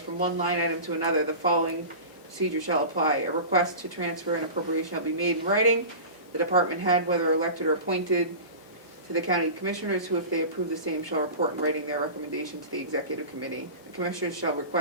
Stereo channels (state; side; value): inverted; both; correlation -0.33